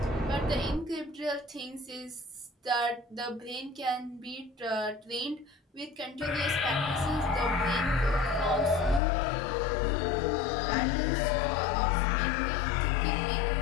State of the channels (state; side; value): drops out; right; at 9.0 s